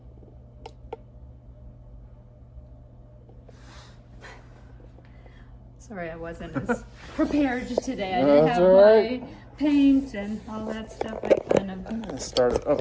Sorry, I wasn't as prepared today. I didn't have my paint and all that stuff. I kind of started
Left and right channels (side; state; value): both; identical; correlation 1.00